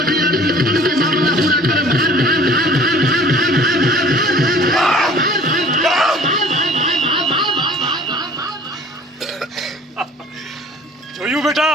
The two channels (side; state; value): both; normal; correlation 0.49